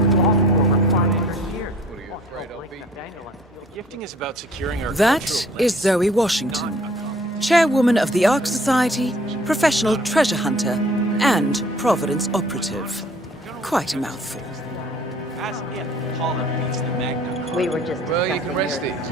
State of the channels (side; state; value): both; normal; correlation 0.54